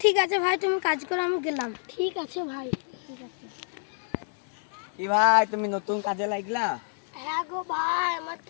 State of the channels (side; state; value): right; silent; 58 dB below the other